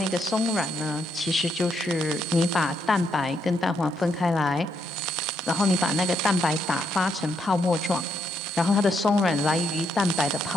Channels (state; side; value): normal; both; correlation 0.76